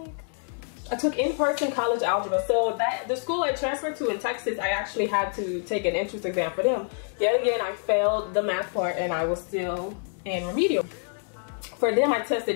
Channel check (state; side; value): silent; right; 56 dB below the other